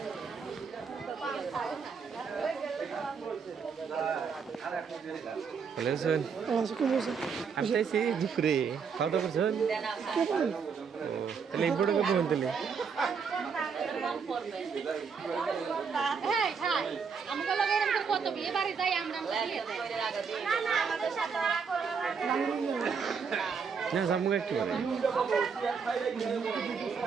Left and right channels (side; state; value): left; quieter; 6.0 dB